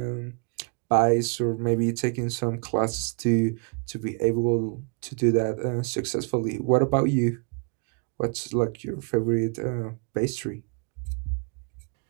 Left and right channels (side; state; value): left; quieter; 37.9 dB